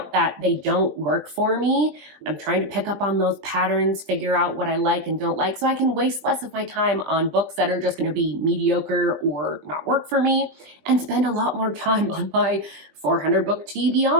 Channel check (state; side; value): late; left; 20 ms